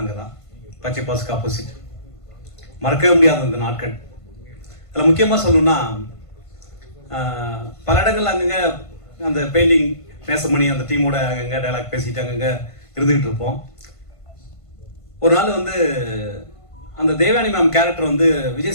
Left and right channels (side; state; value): right; late; 1.5 ms